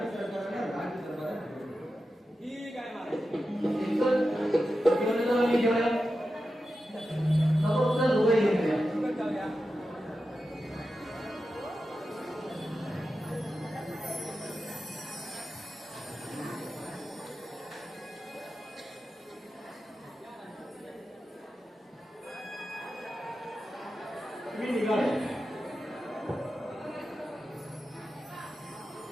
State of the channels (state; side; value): normal; both; correlation 0.91